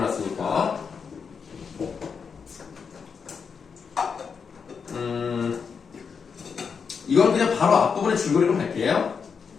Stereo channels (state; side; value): quieter; right; 6.0 dB